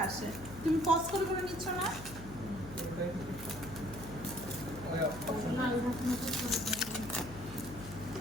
আসে তুমি পজ করে করে নিচ্ছ না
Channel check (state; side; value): noise; left; hum, 13 dB below the sound